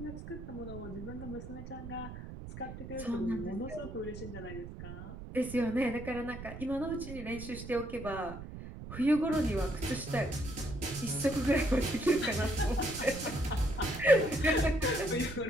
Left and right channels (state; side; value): noise; right; rumble, 11 dB below the sound